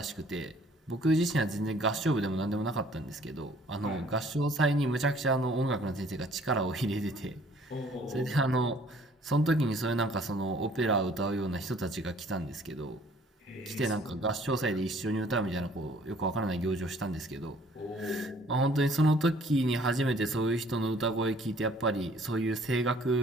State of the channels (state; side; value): normal; both; correlation 0.57